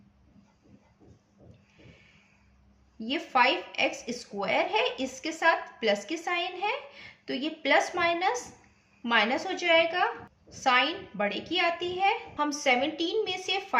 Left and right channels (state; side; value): identical; both; correlation 1.00